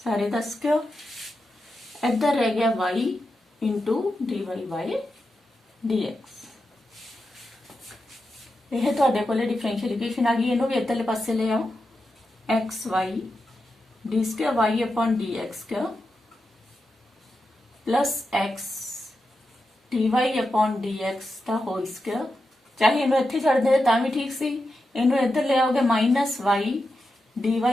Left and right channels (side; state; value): both; normal; correlation 0.89